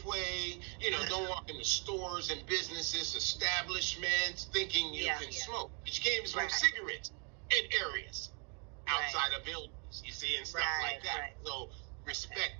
don't walk in the stores and businesses, establishments, thinking you can smoke. But you can't even smoke cigarettes in areas outside of buildings, you see, and stuff like that. So respect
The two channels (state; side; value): quieter; left; 37.0 dB